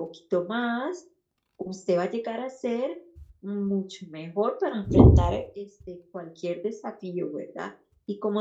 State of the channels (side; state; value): both; identical; correlation 1.00